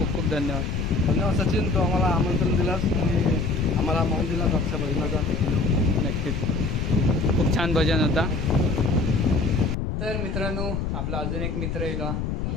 खूप धन्यवाद. धन्यवाद सचिन, तो आम्हाला आमंत्रण दिलास आणि आम्हाला मान दिलास आमच्या भजनाचा. नक्कीच खूप छान भजन होता. तर मित्रांनो आपला अजून एक मित्र येईल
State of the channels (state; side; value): noise; left; rumble, 2 dB below the sound